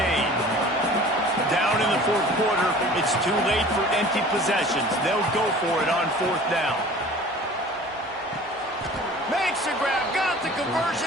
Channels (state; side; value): normal; both; correlation 0.45